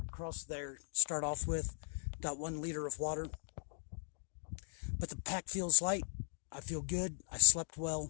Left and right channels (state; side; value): silent; right; digital silence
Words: across there, start off with about 1 liter of water. But the pack feels light. I feel good. I slept